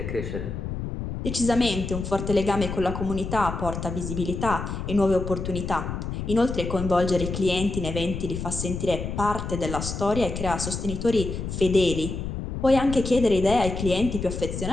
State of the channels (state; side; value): noise; left; rumble, 5 dB below the sound